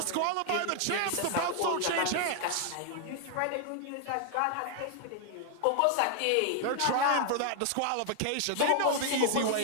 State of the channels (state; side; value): different; both; correlation 0.00